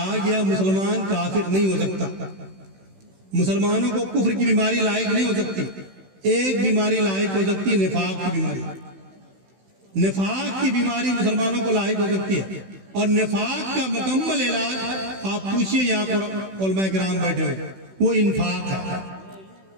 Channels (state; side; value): late; left; 16 ms